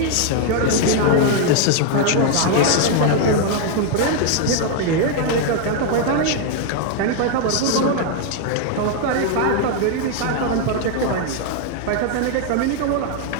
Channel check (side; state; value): both; different; correlation 0.00